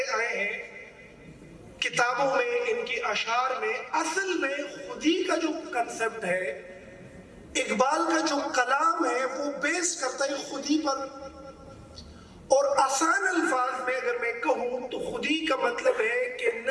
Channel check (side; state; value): both; identical; correlation 1.00